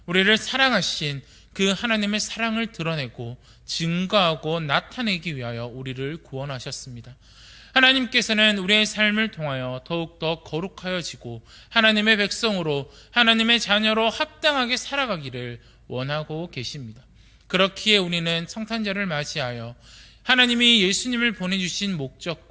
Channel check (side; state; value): both; identical; correlation 1.00